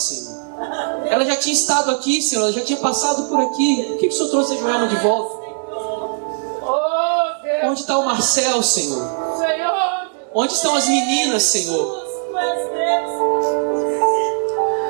Ela já tinha estado aqui, Senhor, ela já tinha passado por aqui. Por que o Senhor trouxe a Joelma de volta? Onde está o Marcel, Senhor? Onde estão as meninas, Senhor?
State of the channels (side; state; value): left; silent; digital silence